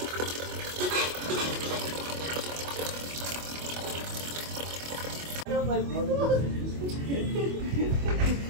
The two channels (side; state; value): left; late; 25 ms